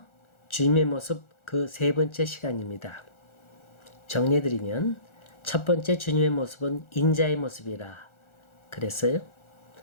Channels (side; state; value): right; late; 1.4 ms